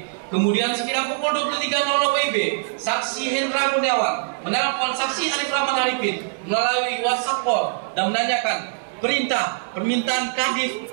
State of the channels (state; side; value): silent; left; digital silence